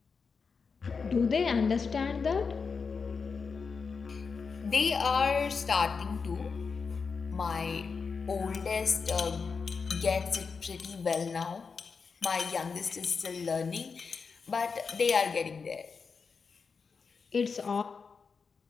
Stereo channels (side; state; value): right; quieter; 5.3 dB